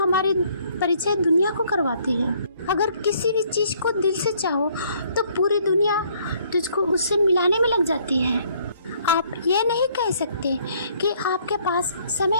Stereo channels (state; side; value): inverted; both; correlation -0.63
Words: परिचय दुनिया को करवाती है। अगर किसी भी चीज़ को दिल से चाहो तो पूरी दुनिया तुझको उससे मिलाने में लग जाती है। आप ये नहीं कह सकते कि आपके पास